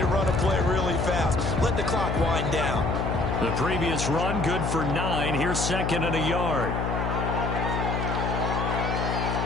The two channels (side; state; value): left; noise; hum, 1 dB below the sound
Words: run a play really fast. Let the clock wind down. The previous run, good for 9. Here's second and a yard.